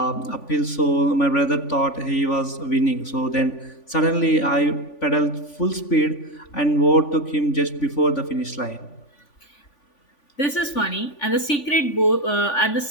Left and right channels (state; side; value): late; right; 3.5 ms